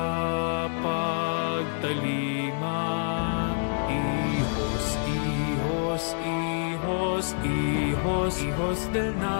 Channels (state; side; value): silent; right; digital silence